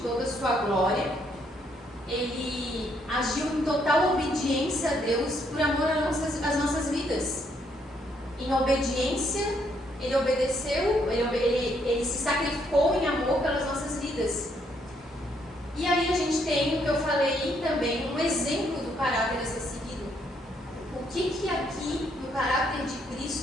a sua glória. Ele agiu em total obediência a Deus por amor às nossas vidas. Em obediência, Ele obedeceu, ele se sacrificou em amor pelas nossas vidas. E aí a gente tem, o que eu falei também, um exemplo do caráter a ser seguido. O que aqui, no caráter de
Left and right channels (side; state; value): both; normal; correlation 0.72